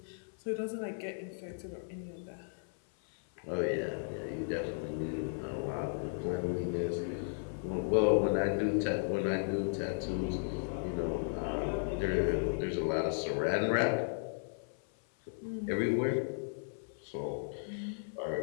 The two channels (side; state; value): right; silent; 54 dB below the other